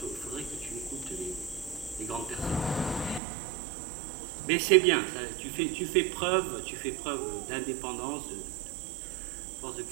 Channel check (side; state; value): left; drops out; at 3.2 s